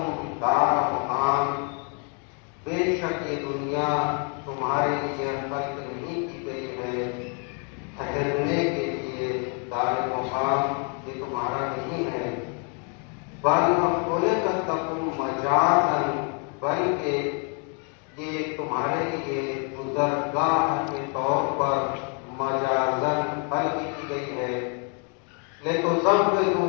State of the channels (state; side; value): quieter; right; 38.9 dB